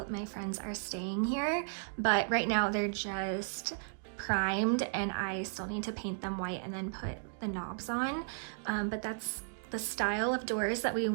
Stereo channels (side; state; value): left; silent; digital silence